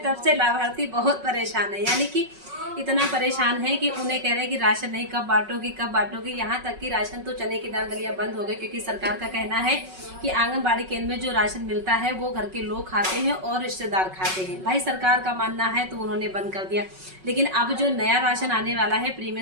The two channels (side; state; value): left; late; 5.4 ms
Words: तब से लाभार्थी बहुत परेशान है। यानी कि इतना परेशान है कि उन्हें कह रहे हैं कि राशन नहीं, कब बांटोगी कब बांटोगी। यहाँ तक कि राशन तो चने की दाल, दलिया बंद हो गए, क्योंकि सरकार का कहना है कि आंगनबाड़ी केंद्र में जो राशन मिलता है वो घर के लोग खाते हैं और रिश्तेदार खाते हैं। भाई सरकार का मानना है तो उन्होंने बंद कर दिया। लेकिन अब जो नया राशन आने वाला है,